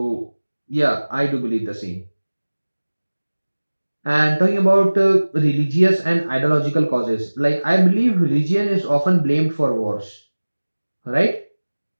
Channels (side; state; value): both; inverted; correlation -1.00